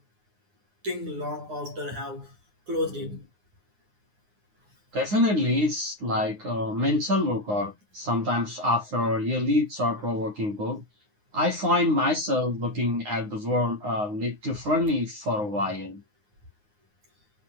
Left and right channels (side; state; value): left; late; 9.6 ms